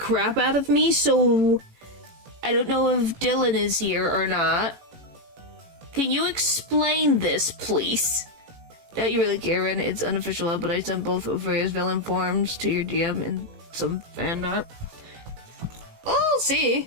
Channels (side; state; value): left; late; 18 ms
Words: out of me, so I don't know if Dylan is here or not. Can you explain this, please? Don't you really care, Ren? It's unofficial, but I sent both of various villain forms to your DM and some fan art. I'll